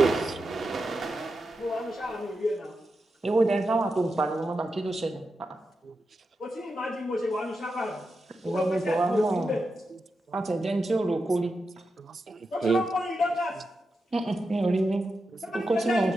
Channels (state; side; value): normal; both; correlation 0.89